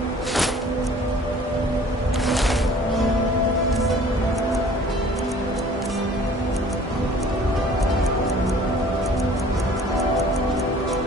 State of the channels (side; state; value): both; normal; correlation 0.51